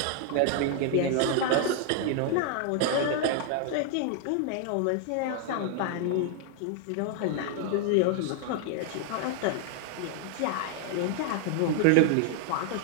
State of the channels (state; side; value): different; both; correlation 0.00